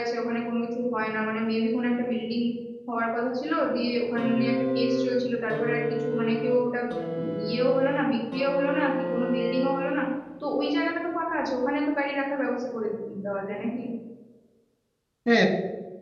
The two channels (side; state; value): both; identical; correlation 1.00